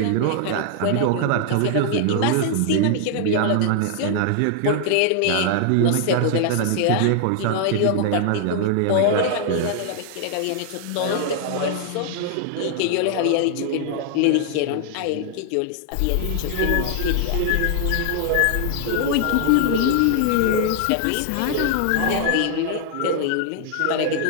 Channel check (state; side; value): different; both; correlation 0.00